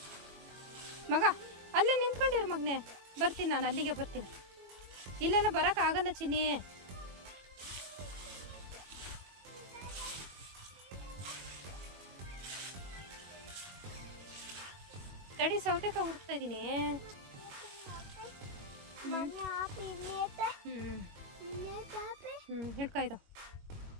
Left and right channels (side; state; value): left; late; 21 ms